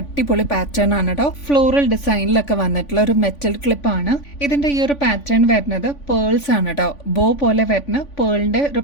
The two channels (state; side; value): late; right; 3.5 ms